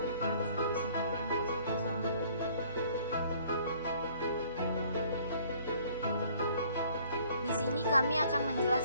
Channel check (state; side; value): inverted; both; correlation -0.58